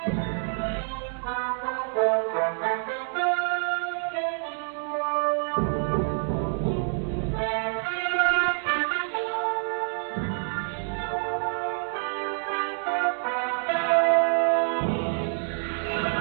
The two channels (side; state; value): left; silent; digital silence